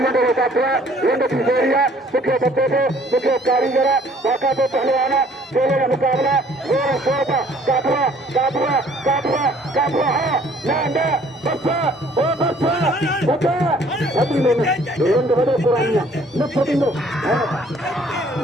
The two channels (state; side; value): normal; both; correlation 0.58